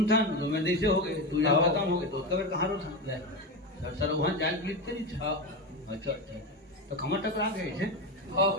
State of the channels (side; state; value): both; normal; correlation 0.17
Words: था तो मैं जैसे हो गए तू जब खत्म हो गए तो कबर कहाँ रोथन सर वहाँ जान लिखते नहीं था अच्छा अच्छा तो खमर टकरा गए थे